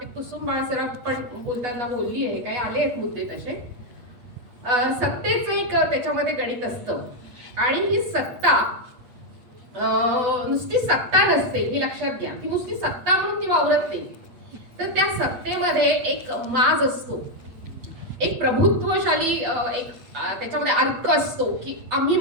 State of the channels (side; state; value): left; late; 8.3 ms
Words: कुसुम बाळसराफ पण बोलताना बोलली आहे, काही आले आहेत मुद्दे तसे. सत्तेचं एक त्याच्यामध्ये गणित असतं आणि ही सत्ता नुसती सत्ता नसते हे लक्षात घ्या. ती नुसती सत्ता म्हणून ती वावरत नाही, तर त्या सत्तेमध्ये एक माज असतो, एक प्रभुत्वशाली एक त्याच्यामध्ये अर्क असतो की आम्ही